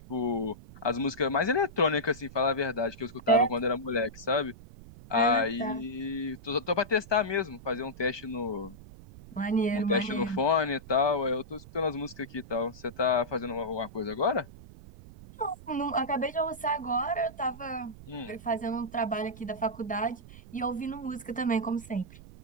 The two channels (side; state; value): right; noise; rumble, 18 dB below the sound